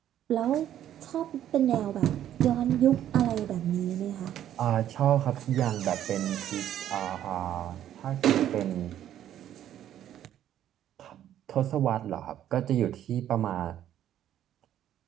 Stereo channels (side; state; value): left; quieter; 11.3 dB